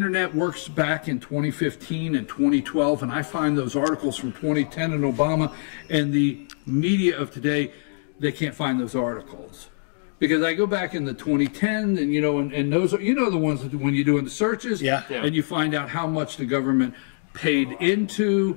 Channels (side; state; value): right; silent; digital silence